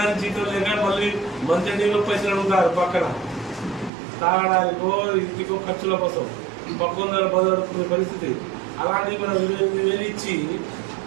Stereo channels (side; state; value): left; drops out; at 3.9 s